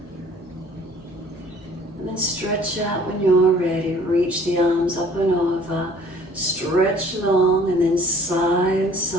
And then stretch out when you're ready. Reach the arms up and over. Stretch long and then sigh and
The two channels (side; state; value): both; normal; correlation 0.54